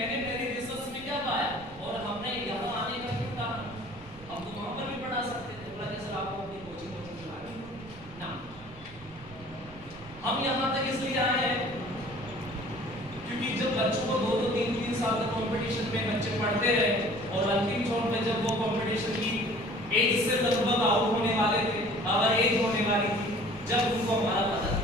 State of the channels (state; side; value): noise; right; rumble, 20 dB below the sound